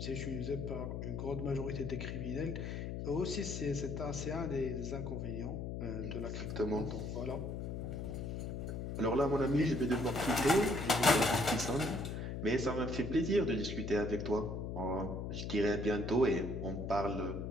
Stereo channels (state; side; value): noise; left; hum, 4 dB below the sound